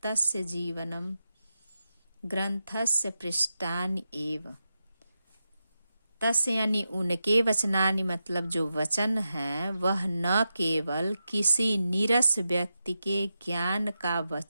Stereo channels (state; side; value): inverted; both; correlation -0.89